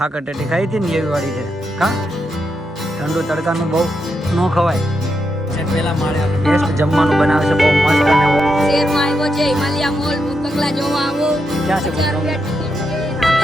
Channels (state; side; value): normal; both; correlation 0.83